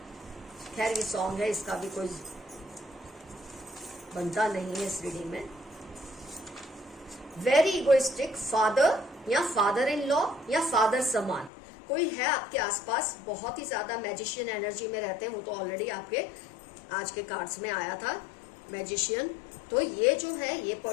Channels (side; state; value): right; drops out; at 11.5 s